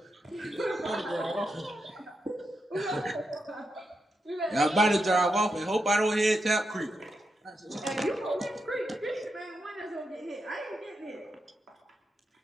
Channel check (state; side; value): normal; both; correlation 0.85